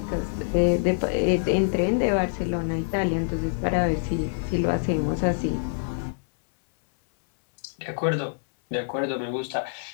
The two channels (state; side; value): silent; right; 61 dB below the other